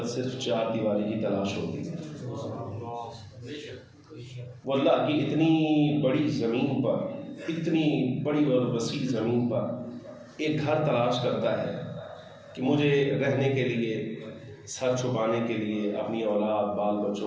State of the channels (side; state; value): both; identical; correlation 1.00